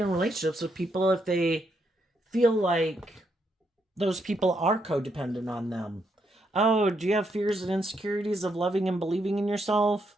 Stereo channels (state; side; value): normal; both; correlation 0.78